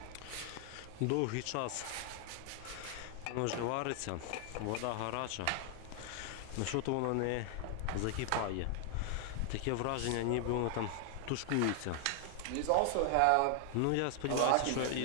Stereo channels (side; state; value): both; different; correlation 0.00